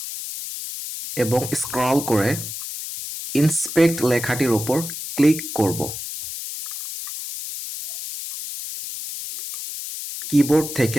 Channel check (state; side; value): noise; left; hiss, 8 dB below the sound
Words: এবং স্ক্রল করে ইন্সপেক্ট লেখাটির উপর ক্লিক করব। কিবোর্ড